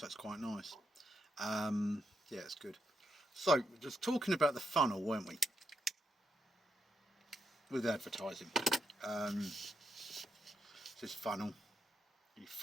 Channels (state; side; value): normal; both; correlation 0.81